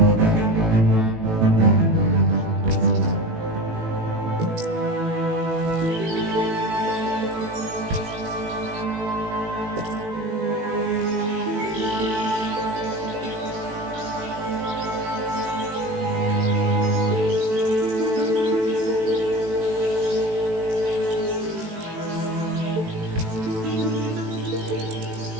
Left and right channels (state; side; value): late; left; 18 ms